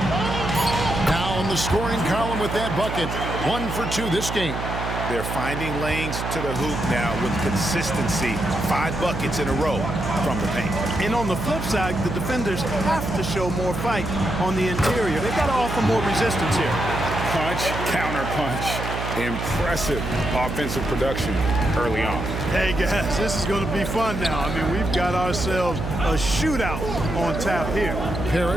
Now in the scoring column with that bucket. 1 for 2 this game. They're finding lanes to the hoop now with consistency. 5 buckets in a row from the paint. And on the flip side, the defenders have to show more fight on the interior. They've got to offer more resistance here. Punch, counter punch. Impressive offensive production early on. Hey, guys, this is going to be fun now. I mean, we've got ourselves a shootout on tap here.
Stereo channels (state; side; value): noise; right; hum, 5 dB below the sound